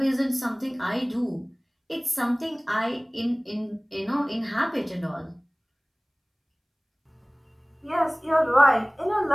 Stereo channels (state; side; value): identical; both; correlation 1.00